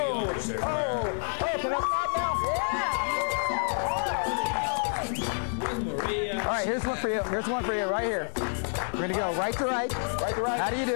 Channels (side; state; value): right; silent; digital silence